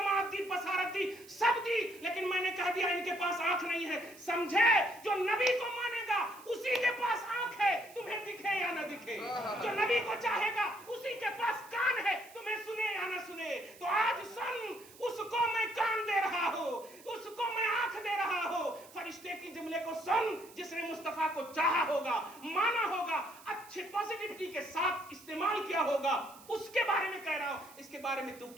لی لیکن میں نے کہہ دیا ان کے پاس آنکھ نہیں ہے. سمجھے, جو نبی کو مانے گا اسی کے پاس آنکھ ہے, تمہیں دکھے یا نہ دکھے. جو نبی کو چاہے گا اسی کے پاس کان ہے, تمہیں سنے یا نہ سنے. تو آج سن, اس کو میں کان دے رہا ہوں, اس کو میں آنکھ دے رہا ہوں. فرشتے کی جملے کو سن, جس نے مصطفیٰ کو چاہا ہوگا, مانا ہوگا, اچھے پازیٹیوٹی کے ساتھ استعمال کیا ہوگا, اس کے بارے میں کہہ رہا ہوں. اس کے بارے میں تو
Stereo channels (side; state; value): right; noise; hiss, 21 dB below the sound